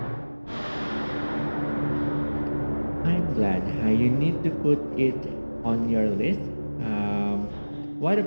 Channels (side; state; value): both; inverted; correlation -1.00